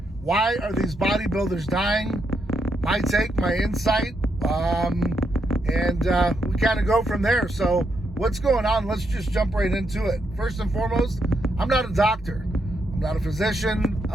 why are these bodybuilders dying? My take, my insight, and we kind of go from there. So what's going on? Let's just jump right into it. First and foremost, I'm not a doctor. I'm not a physician.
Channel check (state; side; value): normal; both; correlation 0.79